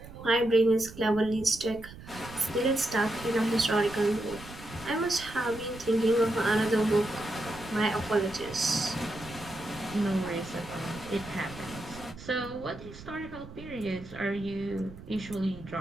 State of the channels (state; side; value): noise; right; rumble, 16 dB below the sound